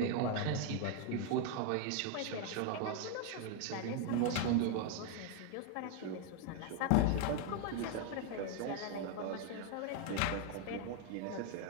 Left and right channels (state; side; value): different; both; correlation 0.01